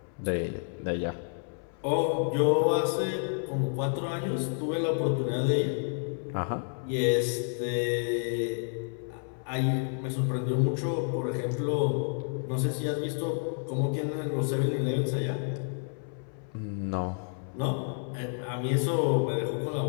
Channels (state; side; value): silent; right; 58 dB below the other